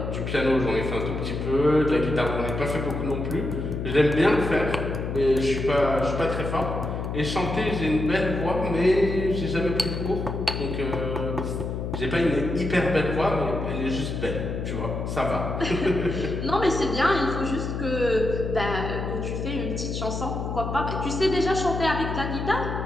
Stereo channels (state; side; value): noise; left; hum, 4 dB below the sound